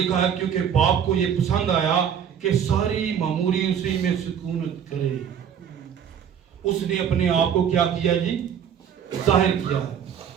है, क्योंकि बाप को ये पसंद आया कि सारी मामूरी उसी में सुकूनत करे। उसने अपने आप को क्या किया जी? जाहिर किया है।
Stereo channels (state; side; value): quieter; left; 8.4 dB